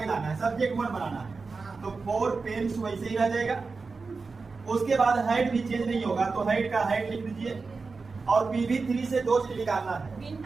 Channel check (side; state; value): left; quieter; 4.3 dB